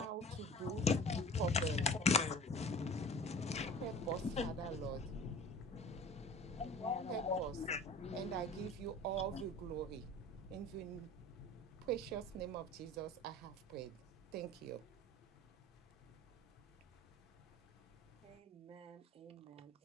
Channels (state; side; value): normal; both; correlation 0.41